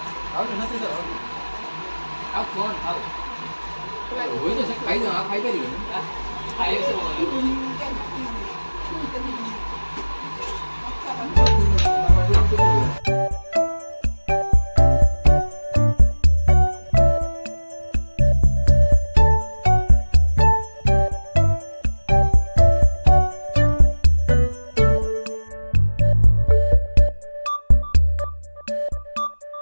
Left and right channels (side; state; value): both; inverted; correlation -1.00